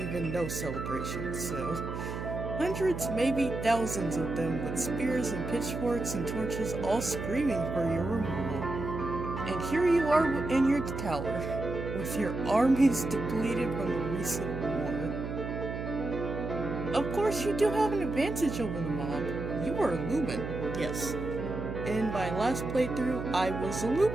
no celebration, so... Hundreds, maybe thousands of them with spears and pitchforks and torches all screaming for your removal. And here you are in your tower, with your armies depleted from the recent war. Of course, you do have an advantage over the mob. You are Lumen, yes. In my last playthrough, I was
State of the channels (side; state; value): right; noise; hum, 6 dB below the sound